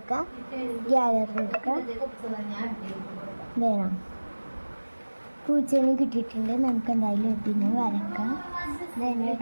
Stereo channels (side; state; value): both; inverted; correlation -1.00